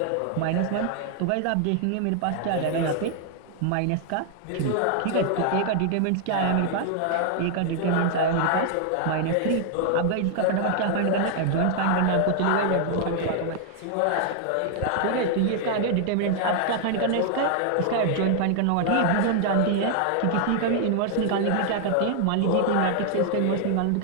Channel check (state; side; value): different; both; correlation 0.00